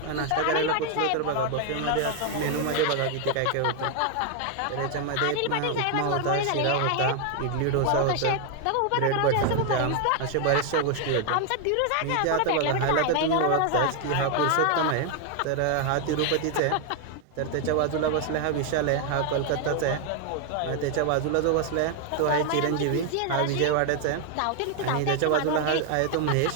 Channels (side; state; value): both; different; correlation 0.00